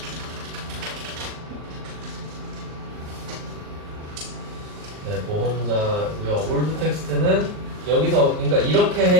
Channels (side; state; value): left; late; 39 ms